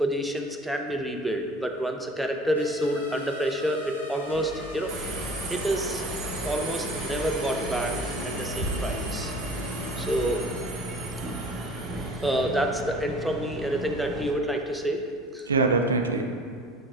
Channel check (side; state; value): both; normal; correlation 0.45